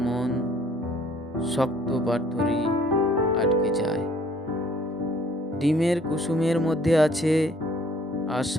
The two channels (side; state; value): both; normal; correlation 0.58